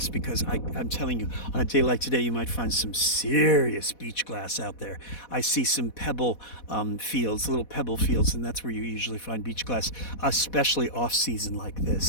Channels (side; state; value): right; late; 4.1 ms